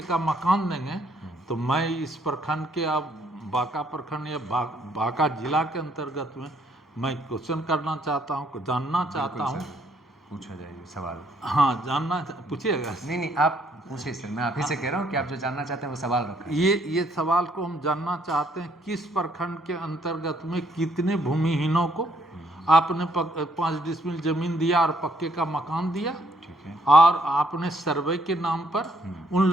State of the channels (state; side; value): normal; both; correlation 0.68